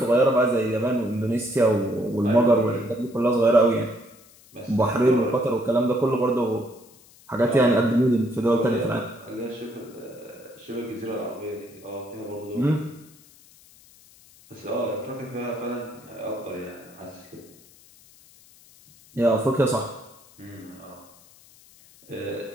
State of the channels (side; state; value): left; noise; hiss, 26 dB below the sound